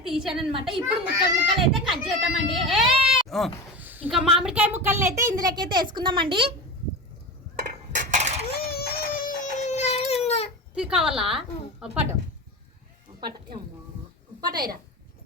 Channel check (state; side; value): normal; both; correlation 0.26